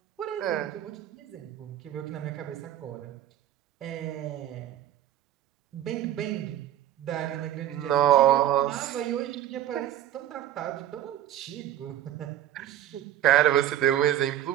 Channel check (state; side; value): quieter; left; 12.1 dB